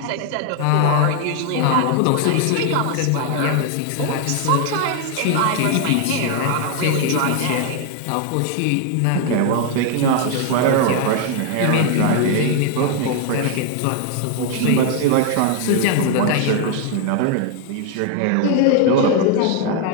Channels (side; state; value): both; different; correlation 0.00